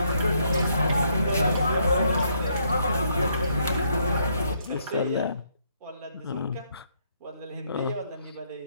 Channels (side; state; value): both; inverted; correlation -0.72